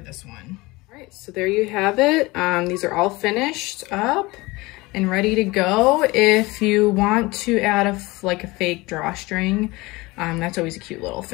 this one. All right, so there you have it. These are all finished up. and ready to go. If you want to add like a fake drawstring, that's always a cute little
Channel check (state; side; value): quieter; right; 22.2 dB